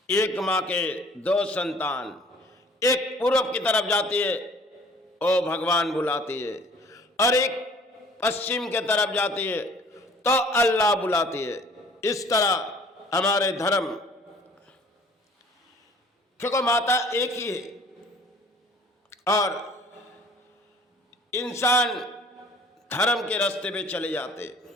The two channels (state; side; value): normal; both; correlation 0.52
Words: एक माँ के दो संतान, एक पूर्व की तरफ जाती है, ओ भगवान बुलाती है, और एक पश्चिम के तरफ जाती है तो अल्लाह बुलाती है। इस तरह हमारे धर्म, क्योंकि माता एक ही है और इंसान धर्म के रास्ते पे चले जाते,